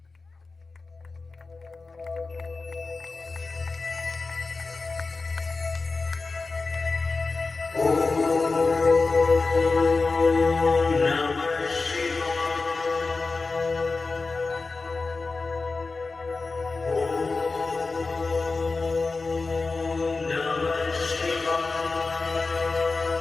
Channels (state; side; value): quieter; right; 3.9 dB